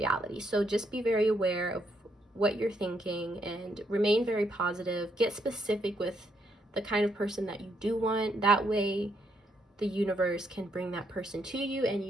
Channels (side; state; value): both; normal; correlation 0.75